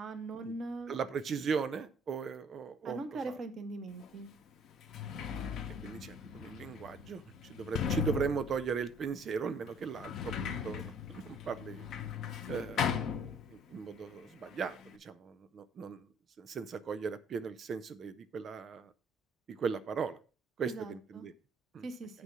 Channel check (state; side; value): normal; both; correlation 0.59